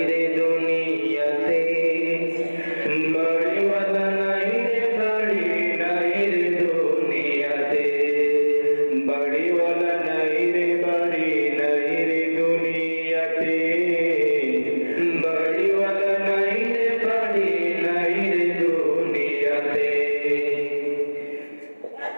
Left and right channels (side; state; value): both; inverted; correlation -1.00